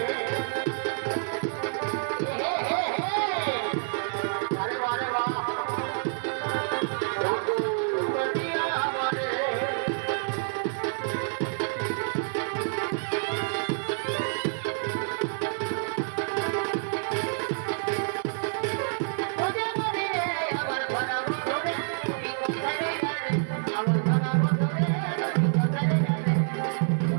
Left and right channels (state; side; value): silent; left; digital silence